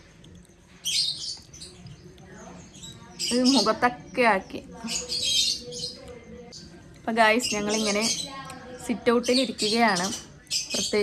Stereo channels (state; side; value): identical; both; correlation 1.00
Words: ഇത് മുഖത്തൊക്കെ ആക്കി. അപ്പം ഗായ്സ്, ഞങ്ങളിങ്ങനെ സിറ്റ് ഔട്ടിൽ ഇരിക്കുകയാണ്.